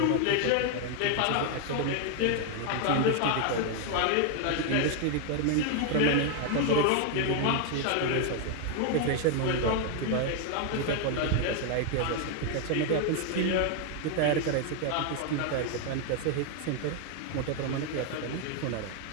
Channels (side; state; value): both; different; correlation 0.00